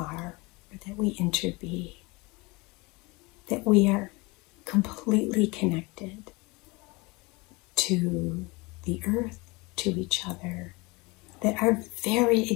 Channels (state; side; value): quieter; right; 25.3 dB